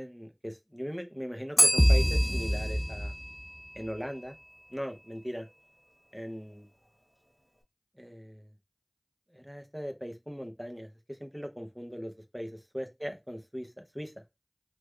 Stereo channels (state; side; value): identical; both; correlation 1.00